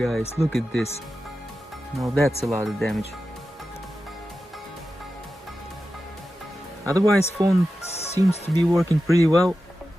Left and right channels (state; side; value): normal; both; correlation 0.92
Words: look at this. Now that's a lot of damage. Otherwise, phone seems to be working pretty well,